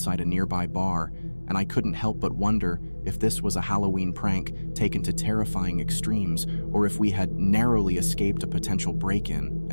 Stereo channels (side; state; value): both; inverted; correlation -1.00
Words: a nearby bar, and I couldn't help but wonder if this was a Halloween prank taken to terrifying extremes, or if we had narrowly escaped a potential break-in,